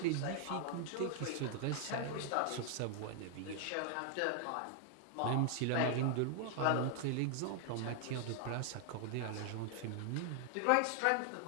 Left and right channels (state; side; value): different; both; correlation 0.00